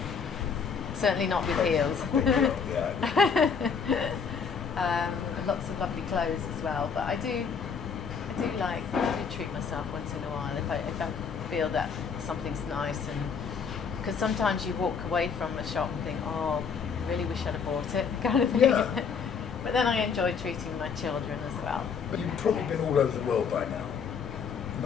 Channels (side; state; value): right; quieter; 6.1 dB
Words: Certainly not with heels. Lots of lovely clothes as well, but I do treat myself once in a while if I feel that something's nice, and because sometimes you walk away from a shop and think, oh, really wish I'd have bought it, kind of thing. Yeah. But then I enjoy treating my children as well. But you've probably been all over the world by now.